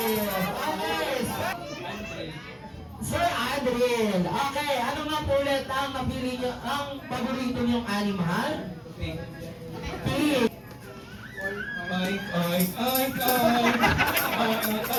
Okay! Sir Adriel, okay, ano nga po ulit ang napili nyo, ang paborito nyong animal? Pig.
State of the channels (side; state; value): both; identical; correlation 1.00